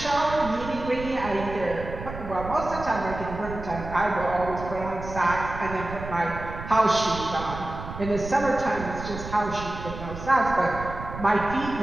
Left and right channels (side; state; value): right; noise; rumble, 10 dB below the sound